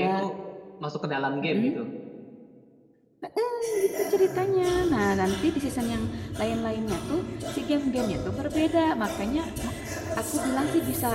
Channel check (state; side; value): identical; both; correlation 1.00